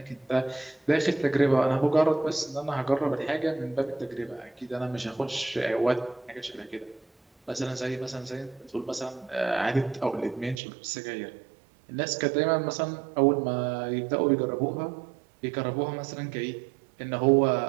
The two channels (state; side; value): drops out; left; at 10.6 s